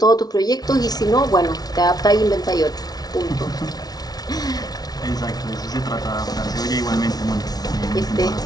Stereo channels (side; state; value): right; late; 0.19 ms